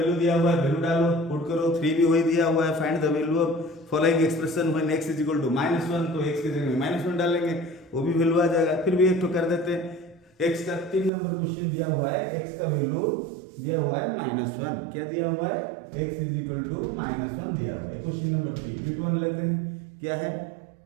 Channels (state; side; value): drops out; left; at 11.1 s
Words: दिया हुआ है, वैल्यू डालो पुट करो। 3 भी वही दिया हुआ है, find the value of following expression when x is equal to -1, तो x के जगह में -1 डालेंगे, वो भी वैल्यू आ जाएगा। फिर भी एक तो कर देते हैं, x का 3 नंबर क्वेश्चन दिया हुआ है, x का वैल्यू दिया हुआ है -1, क्या दिया हुआ है, x इज इक्वल टू -1 दिया हुआ है। क्वेश्चन नंबर 3 बिट 1 लेते हैं, क्या है,